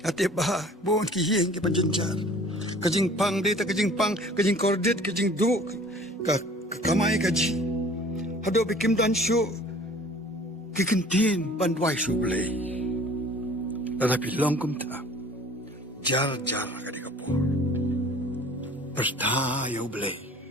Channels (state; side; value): normal; both; correlation 0.49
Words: Ate bah, buon kihing ke panjenjar. Kajing pang data, kajing pang, kajing kordet, kajing du, kamay kaji. Hado bikim dan syu, kikintin bandwai sublay. Tetapi longkum ta, jar kadi kapur. Pertayo blay.